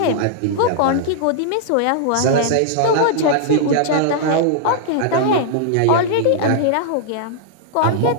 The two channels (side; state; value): both; different; correlation -0.01